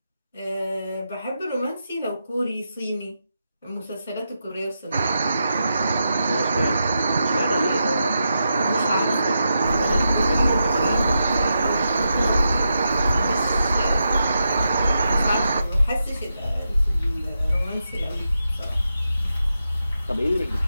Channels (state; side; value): inverted; both; correlation -0.86